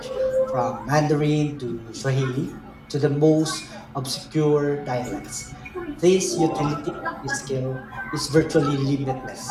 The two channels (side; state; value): both; identical; correlation 1.00